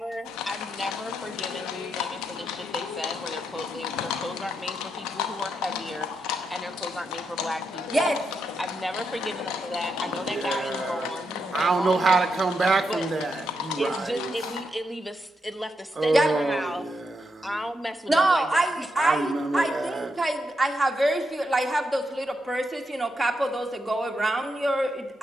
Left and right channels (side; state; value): both; normal; correlation 0.83